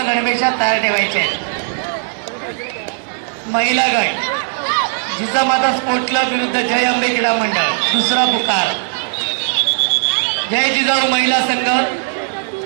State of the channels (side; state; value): left; silent; digital silence